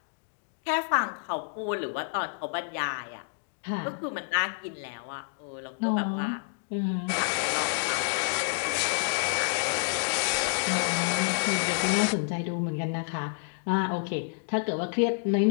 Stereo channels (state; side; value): silent; right; digital silence